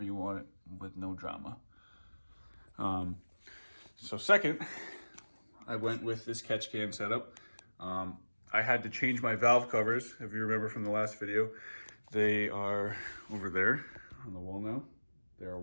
you want it, with no drama. So second, I went with this catch can setup. I had to change my valve covers, if you remember from the last video. They are over there on the wall now. They are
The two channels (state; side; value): inverted; both; correlation -1.00